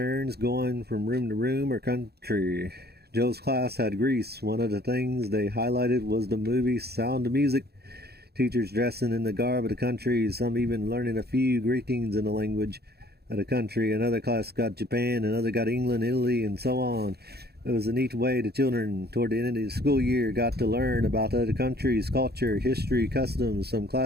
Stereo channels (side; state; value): left; late; 0.47 ms